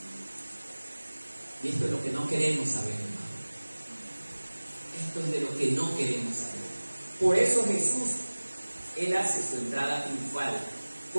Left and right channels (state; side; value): inverted; both; correlation -1.00